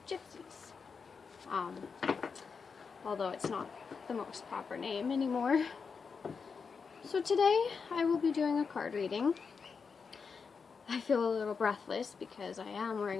gypsies. Although it's not the most proper name anymore. So today I will be doing a card reading. I feel a little breathless because I am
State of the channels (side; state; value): right; quieter; 5.5 dB